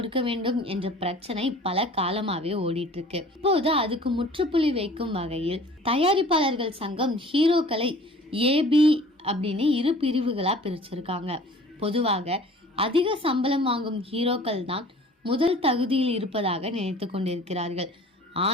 வேண்டும் என்ற பிரச்சனை பல காலமாவே ஓடிட்டு இருக்கு. இப்போது அதுக்கு முற்றுப்புள்ளி வைக்கும் வகையில் தயாரிப்பாளர்கள் சங்கம் ஹீரோக்களை ஏபி அப்படின்னு 2 பிரிவுகளா பிரிச்சிருக்காங்க. பொதுவாக அதிக சம்பளம் வாங்கும் ஹீரோக்கள் தான் முதல் தகுதியில் இருப்பதாக நினைத்து கொண்டிருக்கிறார்கள்.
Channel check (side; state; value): both; normal; correlation 0.47